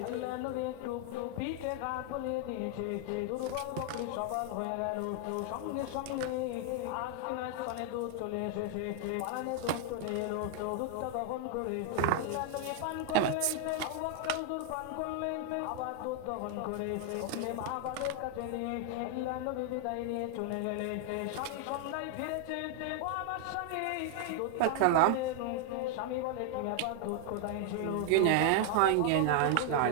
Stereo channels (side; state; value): both; different; correlation 0.00